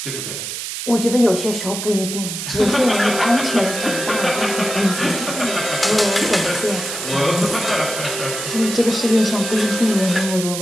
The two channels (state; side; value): noise; right; hiss, 6 dB below the sound